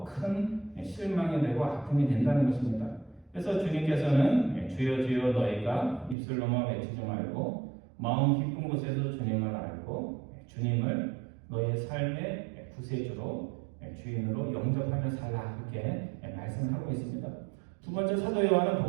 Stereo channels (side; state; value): left; drops out; at 6.2 s